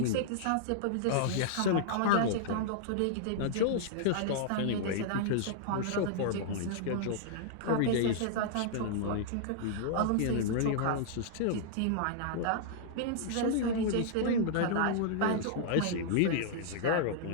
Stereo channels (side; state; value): both; different; correlation -0.01